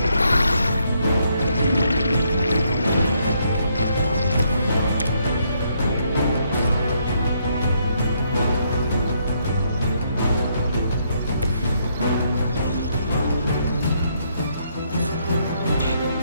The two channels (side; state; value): both; inverted; correlation -0.73